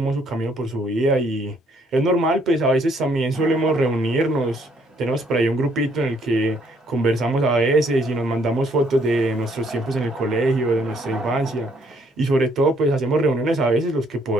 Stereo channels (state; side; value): normal; both; correlation 0.67